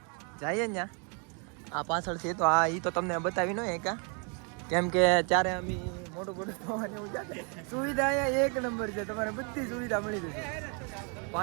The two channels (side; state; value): left; quieter; 37.2 dB